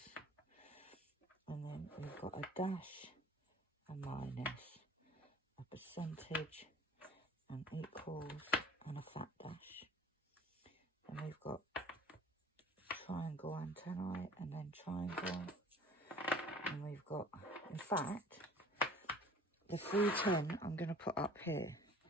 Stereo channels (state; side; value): normal; both; correlation 0.48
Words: And then we've got a dash, a minus, a percentage, and equals, and a fat dash. And we've got triangle antennae, and then triangle. And we've got, in fact, the 310 I'm going to put up here.